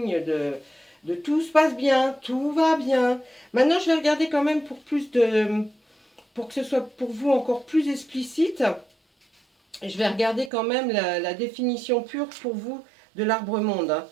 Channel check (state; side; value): drops out; left; at 10.5 s